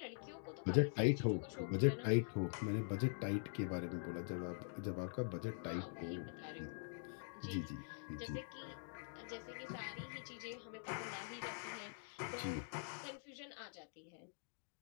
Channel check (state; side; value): silent; right; digital silence